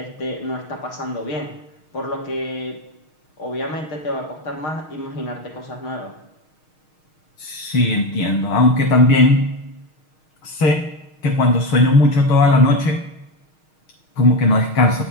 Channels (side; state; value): right; late; 6.4 ms